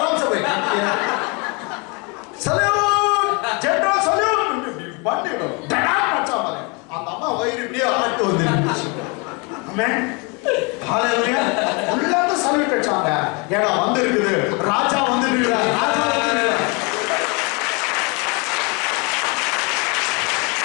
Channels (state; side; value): quieter; right; 30.6 dB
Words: से बैठ सल्यूट जनरल सल्यूट बंदी लो डड़ा नाचा मारे அந்த அம்மா வயிறு இப்படியே ஆட்டு வந்துருச்சு ஆமென் ஹalleluya உள்ளாத சல்யூட் அடிச்சாங்க ஏடா வந்திருக்குது ராஜா வந்திருக்காரு ராஜா வந்திருக்காரு